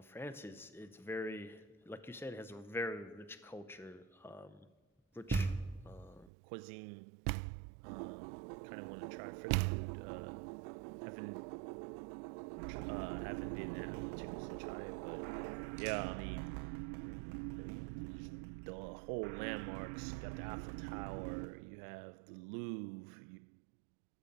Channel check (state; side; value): drops out; left; at 6.3 s